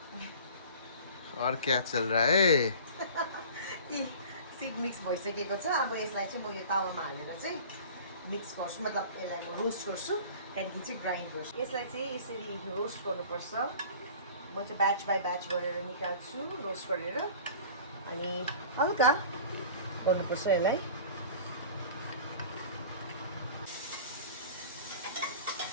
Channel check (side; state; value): both; inverted; correlation -0.43